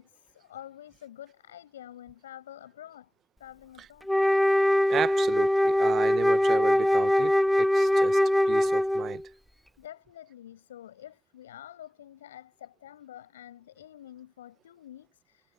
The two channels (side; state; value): both; normal; correlation 0.97